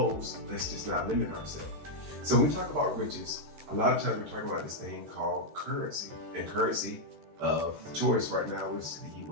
Let's just not limit ourselves. So when we talk about riches, a lot of times we're talking about this thing called currency. And currency of choice right now is the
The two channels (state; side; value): late; left; 13 ms